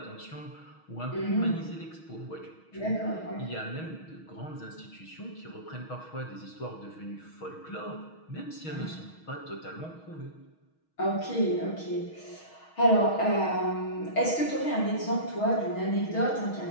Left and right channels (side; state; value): right; late; 6.3 ms